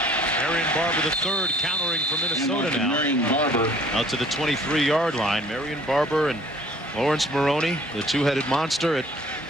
Marion Barber the third, countering for Minnesota now. Marion Barber Out to the 23-yard line. Marion Barber and Lawrence Maroney, the two-headed monster at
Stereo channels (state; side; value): normal; both; correlation 0.54